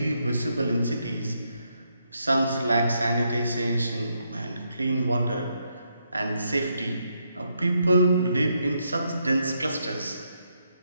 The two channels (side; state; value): both; inverted; correlation -0.78